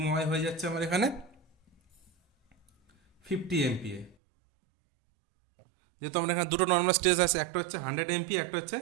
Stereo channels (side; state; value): left; drops out; at 4.2 s